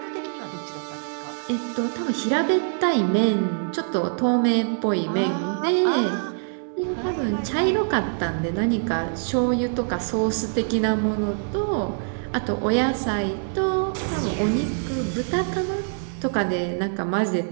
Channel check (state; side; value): silent; left; digital silence